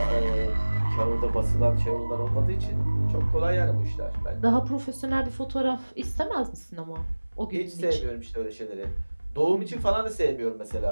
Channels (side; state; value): both; inverted; correlation -1.00